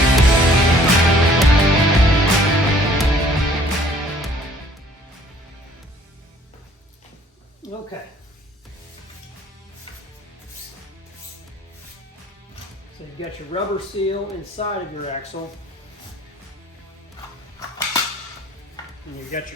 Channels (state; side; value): normal; both; correlation 0.57